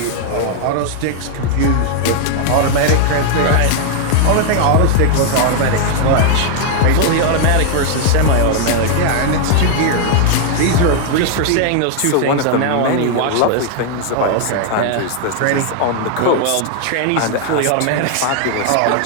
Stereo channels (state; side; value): different; both; correlation 0.00